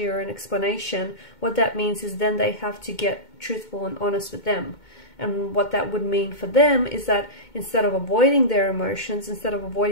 or an explanation, what that means is then they have to get truthful and honest with them. And what that would mean for them is that instead of avoiding their emotions, instead of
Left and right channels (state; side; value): late; right; 2.2 ms